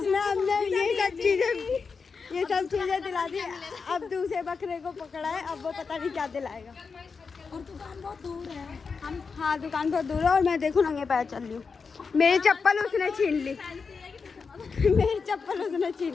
हमने ये सब चीजें दिला दी। अब दूसरे बकरे को पकड़ा है, अब वो पता नहीं क्या दिलाएगा। और दुकान बहुत दूर है। हाँ दुकान बहुत दूर है और मैं देखो नंगे पैर चल रही हूँ। मेरी चप्पल उसने छीन ली, मेरी चप्पल उसने छीन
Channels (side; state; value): right; quieter; 5.1 dB